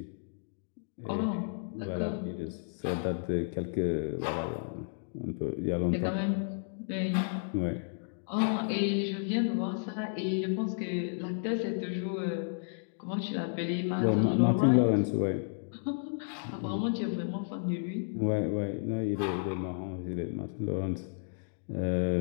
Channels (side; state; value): right; silent; digital silence